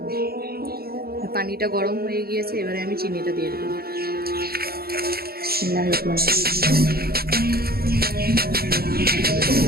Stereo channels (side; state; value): left; late; 0.45 ms